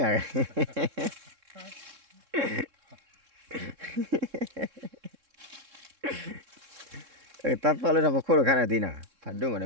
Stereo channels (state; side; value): late; left; 3.7 ms